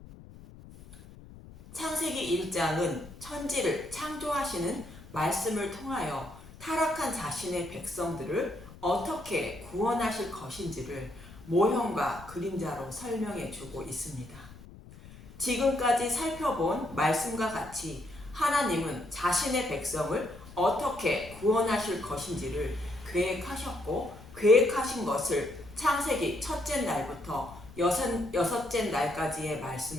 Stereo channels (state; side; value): noise; left; rumble, 18 dB below the sound